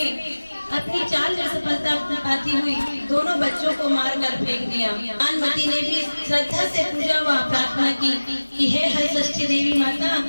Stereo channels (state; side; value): inverted; both; correlation -1.00